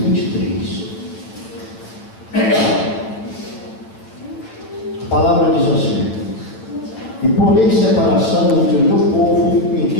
23. A palavra diz assim: e porei separação entre o meu povo e o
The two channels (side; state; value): right; late; 8.7 ms